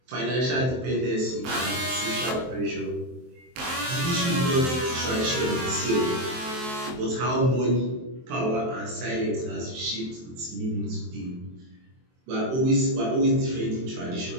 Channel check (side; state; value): left; late; 23 ms